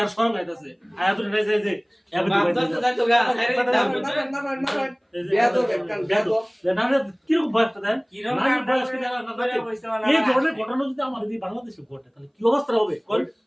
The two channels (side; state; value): both; identical; correlation 1.00